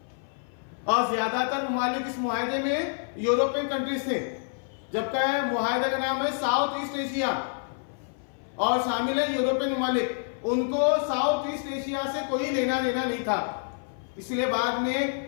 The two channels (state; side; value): silent; right; 57 dB below the other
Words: और ज्यादातर ममालिक इस मुआहदे में यूरोपियन कंट्रीज थे, जबकि मुआहदे का नाम है साउथ ईस्ट एशिया और शामिल है यूरोपियन ममालिक। उनको साउथ ईस्ट एशिया से कोई लेना देना नहीं था। इसलिए बाद में